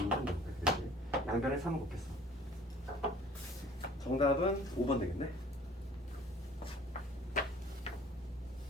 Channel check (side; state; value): both; normal; correlation 0.51